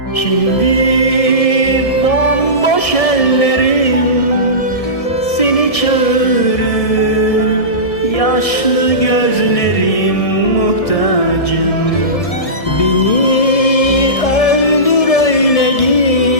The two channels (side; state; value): right; late; 1.7 ms